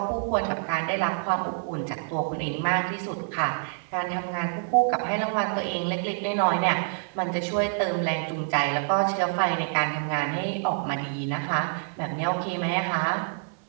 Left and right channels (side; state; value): left; silent; 60 dB below the other